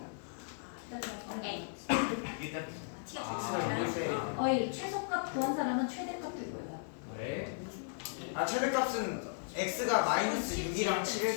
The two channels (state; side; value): silent; right; digital silence